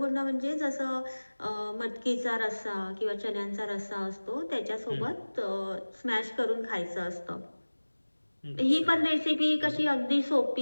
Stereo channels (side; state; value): both; inverted; correlation -1.00